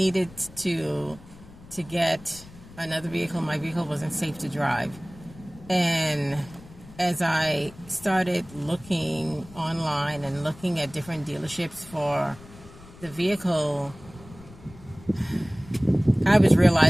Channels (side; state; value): left; noise; rumble, 20 dB below the sound